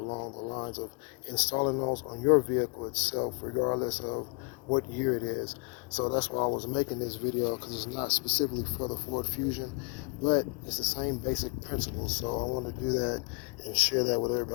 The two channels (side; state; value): right; quieter; 33.7 dB